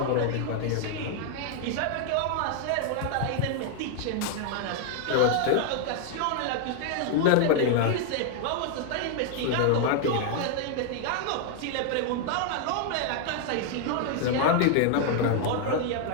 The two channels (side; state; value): both; different; correlation 0.00